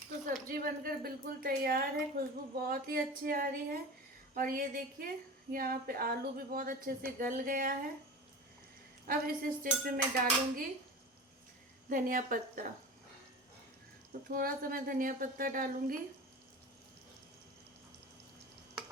तो सब्जी बनकर बिल्कुल तैयार है, खुशबू बहुत ही अच्छी आ रही है। और ये देखिए, यहाँ पे आलू भी बहुत अच्छे से गल गया है। अब इस स्टेज पे मैं डालूंगी धनिया पत्ता। तो थोड़ा सा मैं धनिया पत्ता डालूंगी,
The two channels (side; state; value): both; normal; correlation 0.32